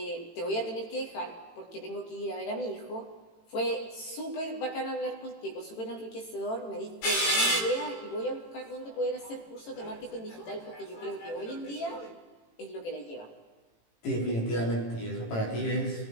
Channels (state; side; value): late; right; 18 ms